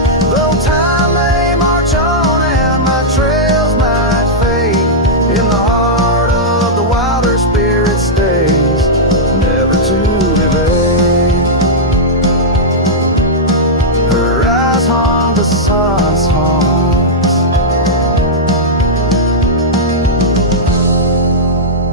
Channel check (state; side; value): normal; both; correlation -0.08